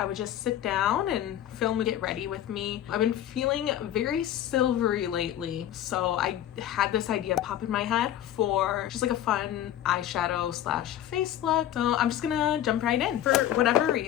would just sit down and film and get ready with me. I've been feeling very silvery lately, so I had this idea pop in my head for just like a fun eyeshadow slash face look. So I'm just gonna jump right in. For whatever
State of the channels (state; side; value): quieter; right; 11.8 dB